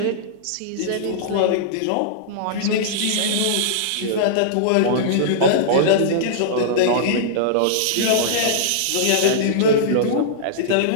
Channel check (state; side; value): different; both; correlation -0.02